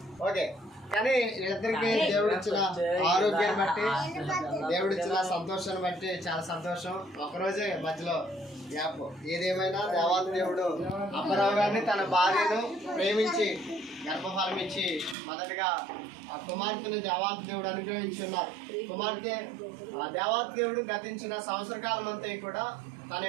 ఓకే, కానీ వీళ్ళిద్దరికి దేవుడిచ్చిన ఆరోగ్యాన్ని బట్టి, దేవుడిచ్చిన సంతోషాన్ని బట్టి చాలా సంతోషం. ఒకరోజే మధ్యలో గ్యాప్. ఏదేమైనా దేవాది దేవుడు అప్పారావు గారిని తన భార్యను ప్రేమించి గర్భఫలం ఇచ్చి మొదటిగా ఆ కుమార్తెను దేవాది దేవుడు అనుగ్రహించున్నారు. కుమార్తె దేవాది దేవుడు గతించిన సంవత్సర కాలం అంతా కూడా తన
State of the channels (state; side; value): drops out; left; at 15.2 s